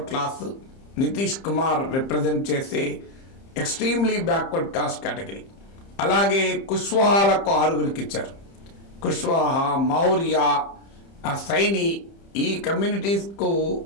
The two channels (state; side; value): late; right; 30 ms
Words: class, Nitish Kumar represent చేసే ఎక్స్ట్రీమ్లీ బ్యాక్వర్డ్ కాస్ట్ కేటగిరీ. అలాగే కుష్వాహాలకు 6 ఇచ్చారు. కుష్వాహా, మౌర్య, సైని, ఈ కమ్యూనిటీస్కు